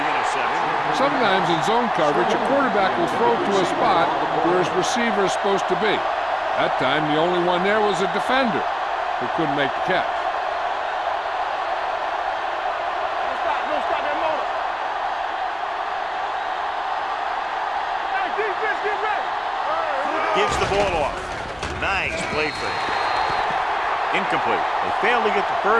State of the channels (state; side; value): identical; both; correlation 1.00